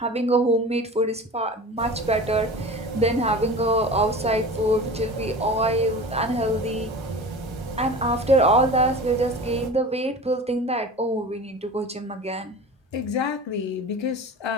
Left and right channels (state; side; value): normal; both; correlation 0.36